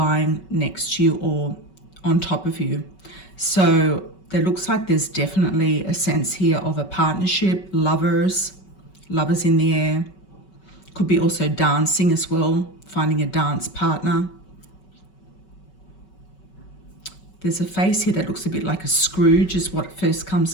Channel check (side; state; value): right; late; 5.3 ms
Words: next to you or on top of you. So there looks like there's definitely a sense here of a partnership, lovers in the air. Could be also dancing as well, finding a dance partner. There's a face here that looks a bit like a Scrooge is what first comes